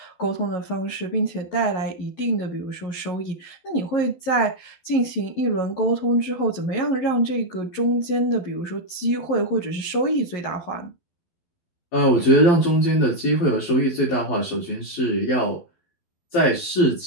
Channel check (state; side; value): late; right; 12 ms